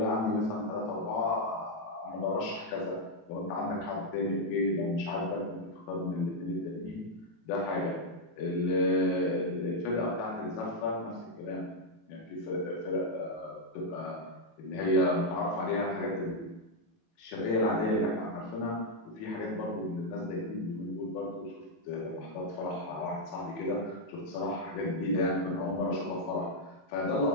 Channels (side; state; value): right; late; 18 ms